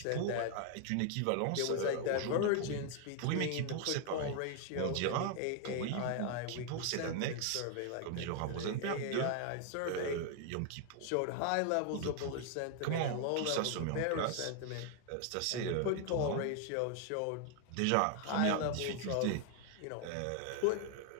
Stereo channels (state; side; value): different; both; correlation 0.00